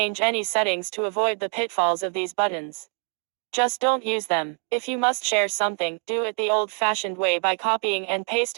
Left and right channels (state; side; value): quieter; left; 38.3 dB